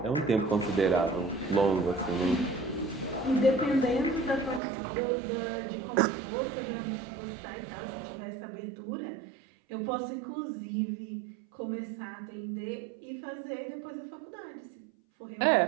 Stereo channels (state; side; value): drops out; left; at 4.6 s